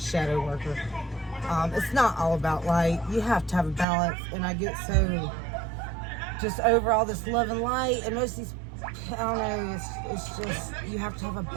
worker. It's not all about light. You have to have a balance, and I get so just over all this love and light, and most of these, I don't know, it's just, you have to have a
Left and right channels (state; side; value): drops out; left; at 3.9 s